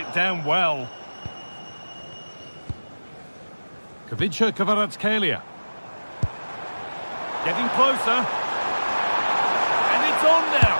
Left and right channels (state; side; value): inverted; both; correlation -1.00